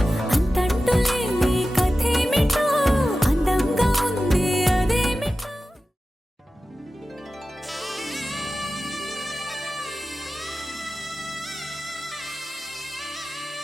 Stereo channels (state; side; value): normal; both; correlation 0.94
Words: అంతంటూ లేని కథేమిటో అందంగా ఉంది అదేమిటో